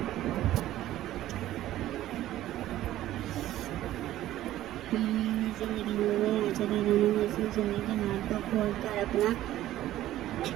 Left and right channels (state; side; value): quieter; left; 14.0 dB